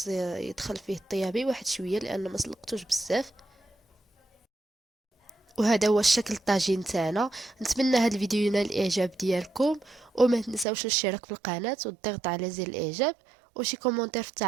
يدخل فيه الطيابي واحد شويه لان ما سلقتوش بزاف. وهذا هو الشكل الطاجين تاعنا. نتمنى هذا الفيديو ينال الاعجاب ديالكم، وما تنساوش الاشتراك في القناه والضغط على زر الاعجاب وشي كومونتير في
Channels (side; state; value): left; drops out; at 10.7 s